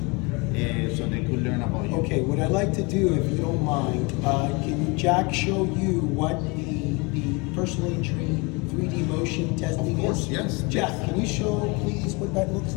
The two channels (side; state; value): right; quieter; 27.8 dB